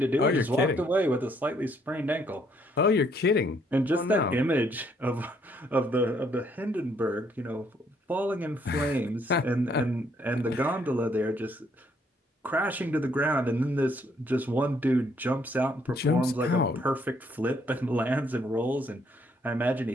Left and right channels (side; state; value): both; normal; correlation 0.68